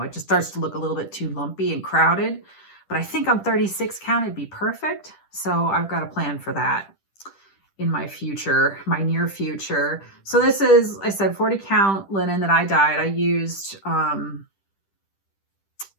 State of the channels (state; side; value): late; right; 10 ms